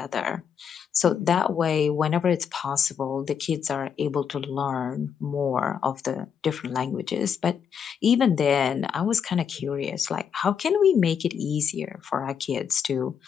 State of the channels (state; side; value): quieter; right; 7.4 dB